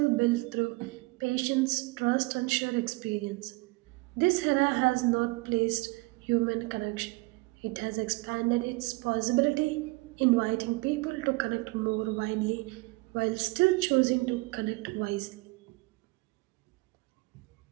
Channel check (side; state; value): left; quieter; 24.5 dB